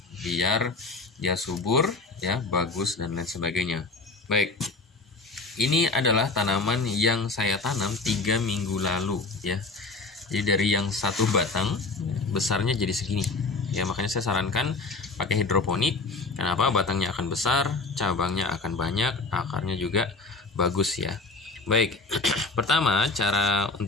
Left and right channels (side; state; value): right; quieter; 3.5 dB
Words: biar dia subur, ya, bagus dan lain sebagainya. Baik, ini adalah tanaman yang saya tanam 3 minggu lalu, ya. Jadi dari yang satu batang besarnya jadi segini, ya. Makanya saya sarankan pakai hidroponik. Kenapa? Batangnya akan besar, cabangnya akan banyak, akarnya juga bagus, ya. Baik, pertama cara